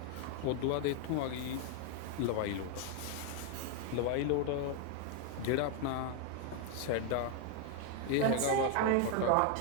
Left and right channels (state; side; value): different; both; correlation 0.00